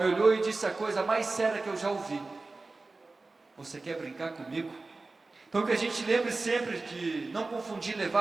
olhou e disse a coisa mais séria que eu já ouvi: você quer brincar comigo? Então que a gente lembre sempre de não confundir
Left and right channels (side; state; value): left; quieter; 3.5 dB